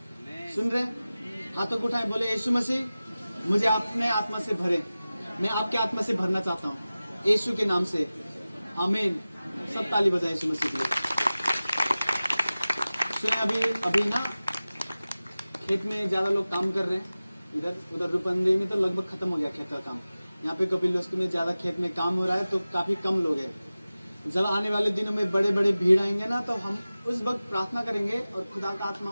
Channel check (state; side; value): inverted; both; correlation -0.96